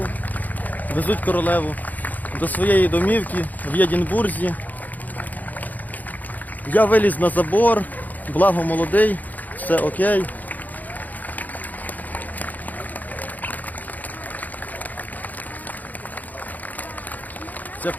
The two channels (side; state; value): right; late; 0.081 ms